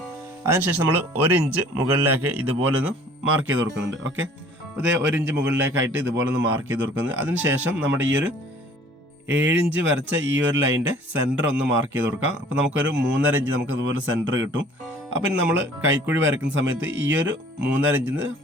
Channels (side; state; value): both; normal; correlation 0.52